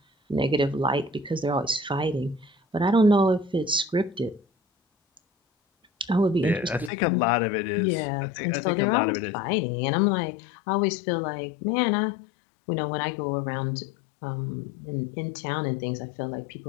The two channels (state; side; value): drops out; right; at 6.9 s